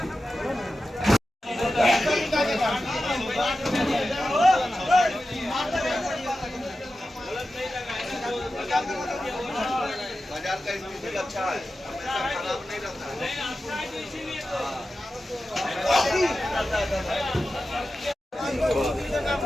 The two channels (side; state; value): both; normal; correlation 0.93